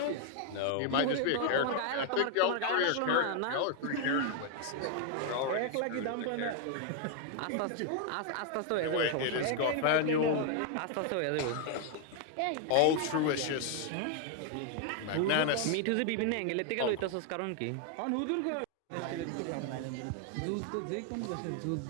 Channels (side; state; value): both; different; correlation 0.00